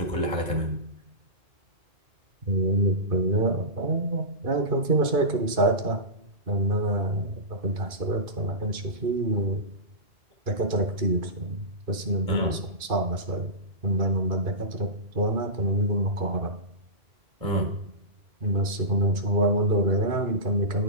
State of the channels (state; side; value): late; left; 2.5 ms